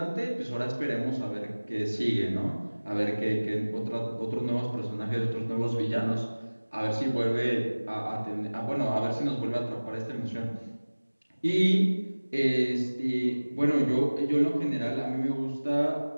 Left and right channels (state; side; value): inverted; both; correlation -1.00